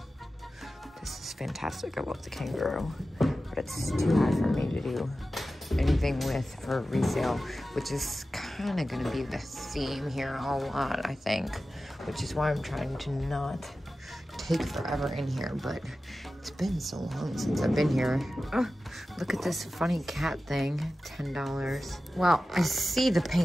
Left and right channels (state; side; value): normal; both; correlation 0.94